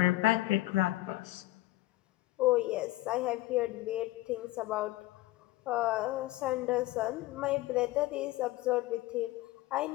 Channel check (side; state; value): right; quieter; 17.7 dB